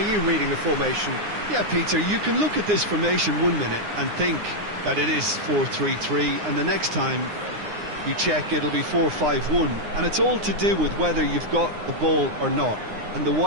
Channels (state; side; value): late; left; 9.7 ms